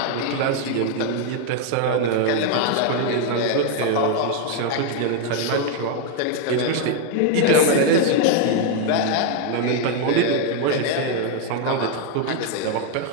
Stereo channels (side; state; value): both; different; correlation 0.01